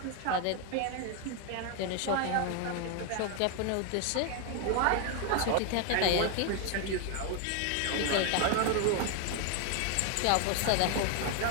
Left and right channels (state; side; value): different; both; correlation 0.01